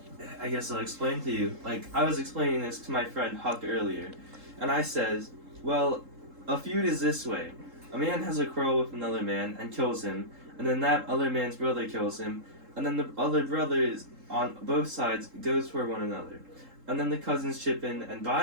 I guess I'll explain to you. I was explaining this to my friend Huck earlier, and I says, well, a feud is this way. A man has a quarrel with another man and kills him, and then that other man's brother kills him, and then the other brothers on both sides goes for one another. And then the cousins chip in, and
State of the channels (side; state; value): left; late; 3.7 ms